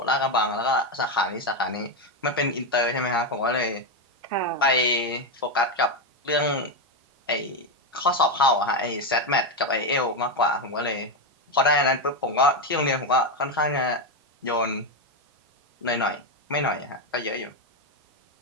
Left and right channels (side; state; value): both; normal; correlation 0.08